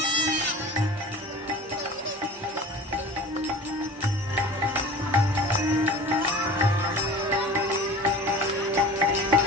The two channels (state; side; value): normal; both; correlation 0.39